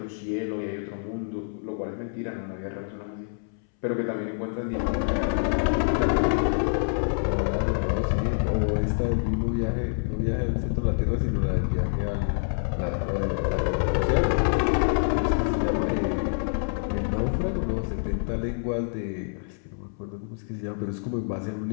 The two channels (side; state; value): right; silent; 60 dB below the other